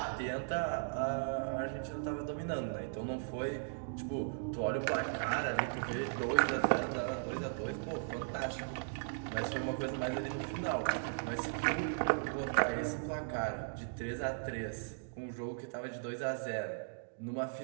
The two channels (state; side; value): silent; left; digital silence